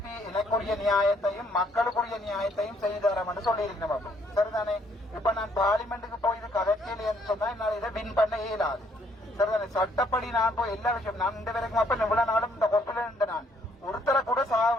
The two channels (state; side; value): normal; both; correlation 0.67